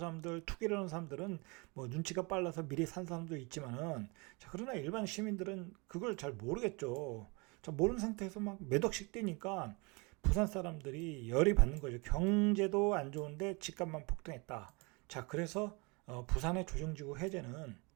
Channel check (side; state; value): left; quieter; 28.8 dB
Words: 투기를 하는 사람들은 뭐 눈치가 빨라서 미리 산 사람도 있지만은, 자, 그러나 일반 시민들은 그걸 잘 모르겠죠. 자, 모르는 상태에서 막 몇 억씩 뛰니까 부산 사람들이 열이 받는 거죠. 경제도 안 좋은데 집값만 폭등했다. 자, 그래서 부산의 조정지구 해제는